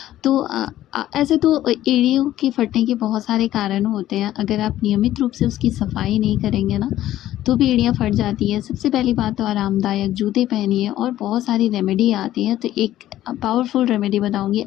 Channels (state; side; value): quieter; right; 13.5 dB